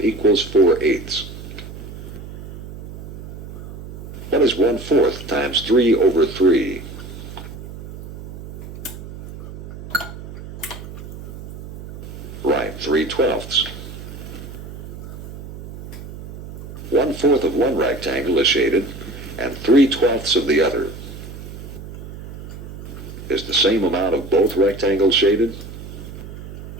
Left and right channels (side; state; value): right; noise; hum, 12 dB below the sound